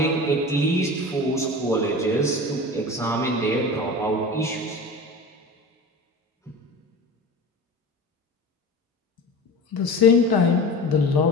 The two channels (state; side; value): normal; both; correlation 0.33